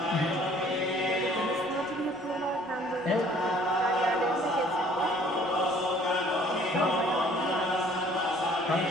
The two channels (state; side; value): noise; left; rumble, 30 dB below the sound